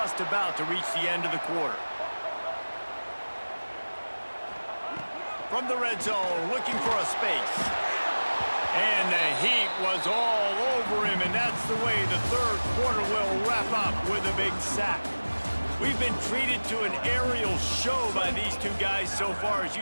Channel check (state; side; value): inverted; both; correlation -1.00